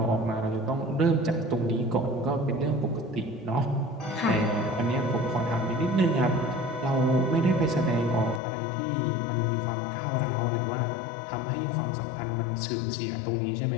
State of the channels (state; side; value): drops out; right; at 8.4 s